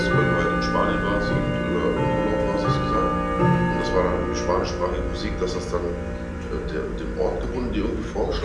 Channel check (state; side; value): identical; both; correlation 1.00